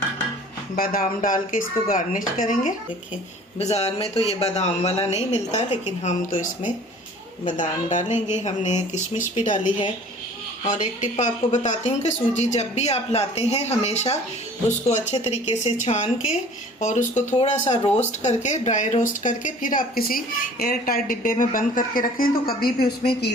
बादाम डाल के इसको गार्निश करेंगे। देखिए बाज़ार में तो ये बादाम वाला नहीं मिलता, लेकिन हम तो इसमें बादाम डालेंगे। हमने किशमिश भी डाली है। और एक टिप आपको बताती हूँ कि सूजी जब भी आप लाते हैं हमेशा उसको अच्छे तरीके से छान के और उसको थोड़ा सा रोस्ट करके, ड्राई रोस्ट करके, फिर आप किसी एयर टाइट डिब्बे में बंद करके रखें तो कभी भी उसमें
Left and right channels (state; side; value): normal; both; correlation 0.48